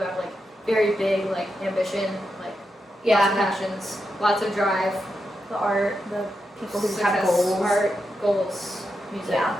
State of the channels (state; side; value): normal; both; correlation 0.86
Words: like very big, like ambition, like Yeah. lots of passions, lots of drive. The art, the people who Success, have goals. art, goals, music, Yeah.